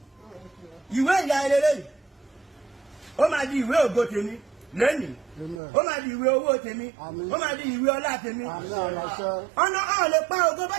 ìwé ìyá ẹlẹ́lẹ́ ó máa di ìwé ògo tèmi lẹ́nìí ó máa di ìwé owó tèmi ó máa di ìwé ọlá tèmi ọ̀nà ọ̀ lè pa ògo bá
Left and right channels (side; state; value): left; drops out; at 5.6 s